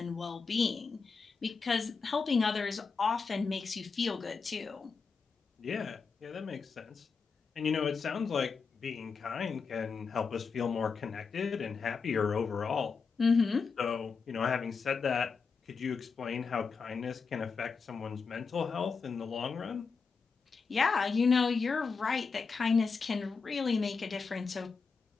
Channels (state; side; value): quieter; right; 5.1 dB